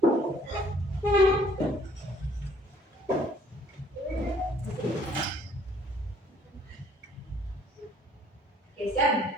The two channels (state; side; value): normal; both; correlation 0.59